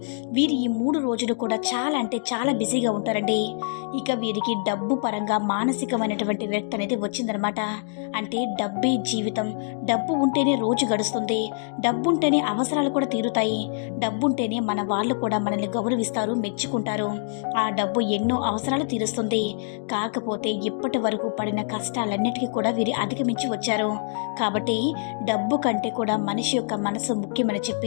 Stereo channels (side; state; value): right; silent; digital silence